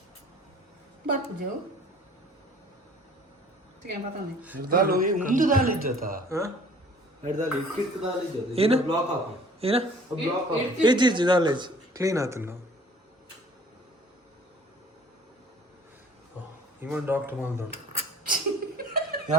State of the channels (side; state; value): both; normal; correlation 0.51